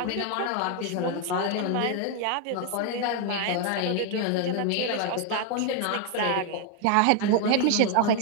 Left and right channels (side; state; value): both; different; correlation 0.00